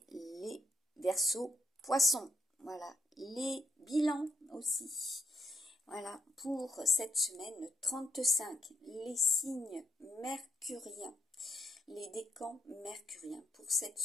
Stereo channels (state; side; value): normal; both; correlation 0.75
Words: les Verseaux, Poissons, voilà, les bilans aussi. Voilà, pour cette semaine 35, les signes mercuriens, les décans mercuriens pour cette